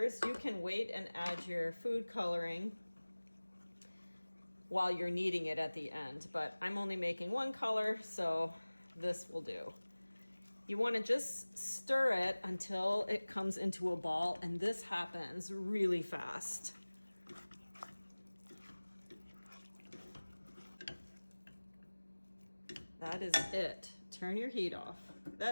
you can wait and add your food coloring while you're kneading it at the end, but I'm only making one color, so this will do. You want to just stir it until it comes into a ball, and this happens really fast. That is it. Turn your heat off.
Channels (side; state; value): both; inverted; correlation -1.00